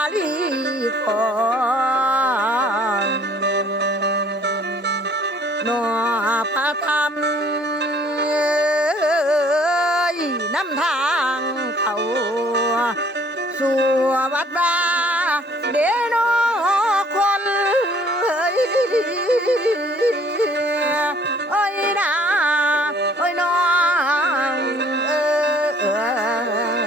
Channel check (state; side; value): normal; both; correlation 0.58